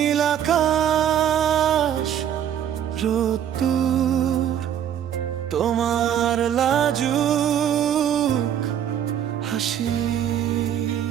আকাশ, রোদ্দুর, তোমার লাজুক হাসি।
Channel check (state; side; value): quieter; left; 9.8 dB